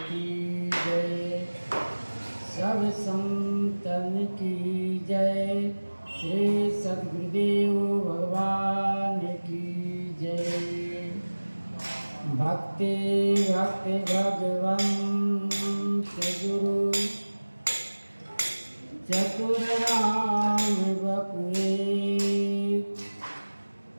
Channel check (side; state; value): both; inverted; correlation -1.00